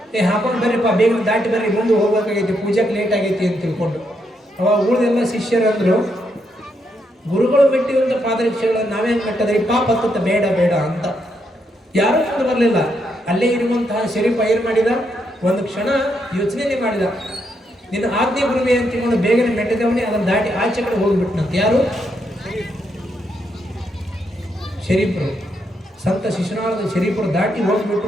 ಹಾಕೊಂಡು ಬರ್ರಿಪ್ಪ, ಬೇಗ ದಾಟಿ ಬರ್ರಿ, ಮುಂದೆ ಹೋಗ್ಬೇಕಾಗೈತಿ, ಪೂಜೆಗೆ ಲೇಟ್ ಆಗೈತಿ ಅಂತ ತಿಳ್ಕೊಂಡು. ಅವಾಗ ಉಳಿದೆಲ್ಲ ಶಿಷ್ಯರು ಅಂದ್ರು, ಗುರುಗಳು ಮೆಟ್ಟಿರುವಂಥ ಪಾದರಕ್ಷೆಗಳನ್ನು ನಾವೇನು ಮೆಟ್ಟದ್ರಿ, ಪಾಪ ಹತ್ತ ಬೇಡ ಬೇಡ ಅಂತ. ಯಾರೂ ಮುಂದೆ ಬರಲಿಲ್ಲ. ಅಲ್ಲೇ ಇರುವಂತಹ ಶರೀಫ್ ಏನ್ ಮಾಡಿದ, ಒಂದು ಕ್ಷಣ ಯೋಚನೆ ಮಾಡಿದ, ನಿನ್ನ ಆಜ್ಞೆ ಗುರುವೆ ಅಂತ ತಿಳ್ಕೊಂಡು ಬೇಗನೆ ಮೆಟ್ಟಿದವನೇ ಅದನ್ನು ದಾಟಿ ಆಚೆ ಕಡೆ ಹೋಗ್ಬಿಟ್ನಂತ. ಯಾರು? ಶರೀಫರು, ಸಂತ ಶಿಶುನಾಳದ ಶರೀಫರು ದಾಟಿ ಹೋಗ್ಬಿಟ್ಟು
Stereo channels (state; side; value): normal; both; correlation 0.79